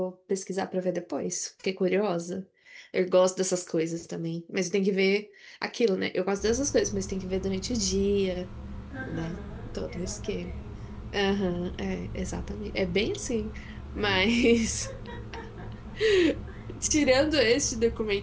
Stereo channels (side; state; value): both; identical; correlation 1.00